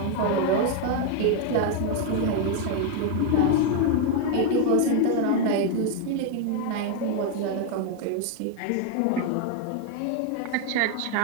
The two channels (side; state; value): both; different; correlation 0.01